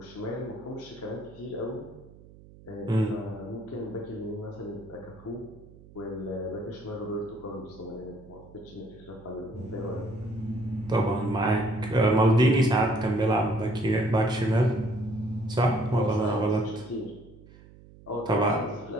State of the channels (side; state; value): right; noise; hum, 22 dB below the sound